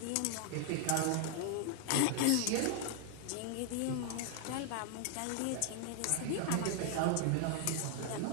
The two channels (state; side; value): different; both; correlation 0.00